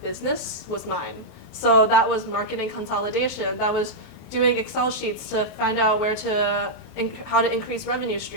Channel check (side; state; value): right; late; 23 ms